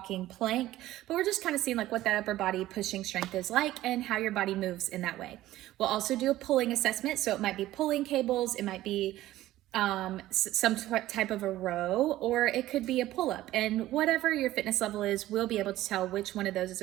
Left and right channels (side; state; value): left; quieter; 15.2 dB